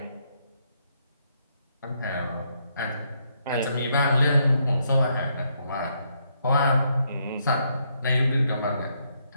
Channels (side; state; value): both; inverted; correlation -0.75